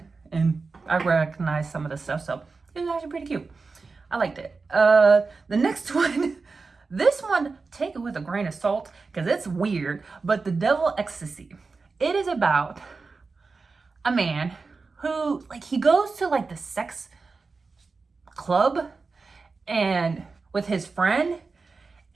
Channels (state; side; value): quieter; left; 4.3 dB